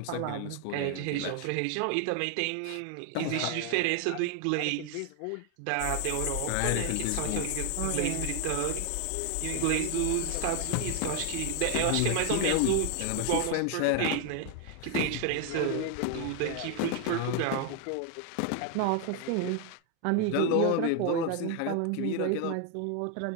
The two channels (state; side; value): different; both; correlation 0.00